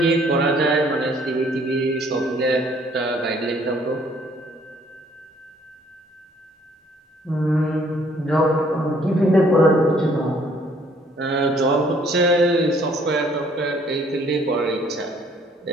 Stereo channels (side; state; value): both; normal; correlation 0.62